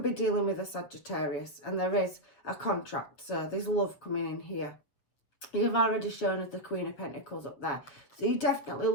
be dealing with a Sagittarius, and there is a contract. So there's love coming in here. You've already shown us the Queen of Pentacles up there. So you're definitely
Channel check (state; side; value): late; right; 7.6 ms